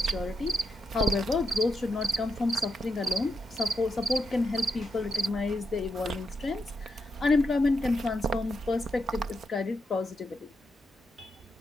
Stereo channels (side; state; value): both; normal; correlation 0.83